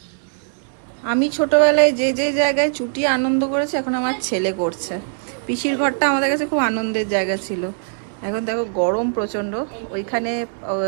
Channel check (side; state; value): left; silent; digital silence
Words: আমি ছোটবেলায় যে যে জায়গায় চুটি আনন্দ করেছি, এখন আমার ছেলে করছে। পিসির ঘরটা আমাদের কাছে খুব আনন্দের জায়গা ছিল। এখন দেখো গরম প্রচন্ড, ওইখানে